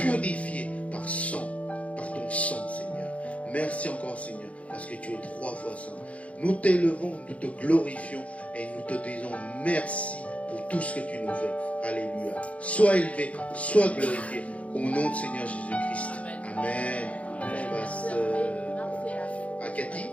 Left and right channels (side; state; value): right; late; 0.065 ms